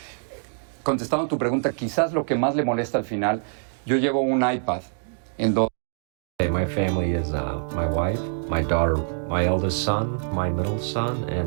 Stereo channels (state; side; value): silent; left; digital silence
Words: Contestando tu pregunta, quizás lo que más le molesta al final, yo llevo un iPad en donde... My family is my wife, my daughter, my eldest son, my middle son,